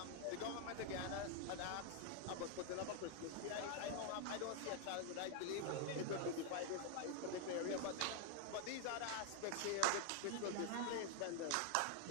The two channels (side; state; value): both; different; correlation 0.00